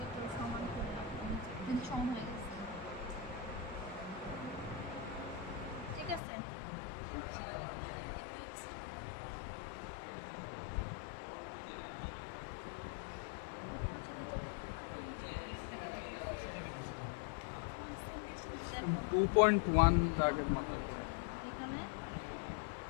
সমান করে রাখবো, কিন্তু সমান হয়ে গেছে ঠিক আছে। দেখো 2.1 দাগের মতো এখানে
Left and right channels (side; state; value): right; drops out; at 6.2 s